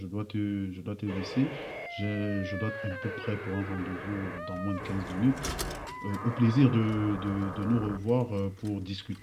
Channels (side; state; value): both; identical; correlation 1.00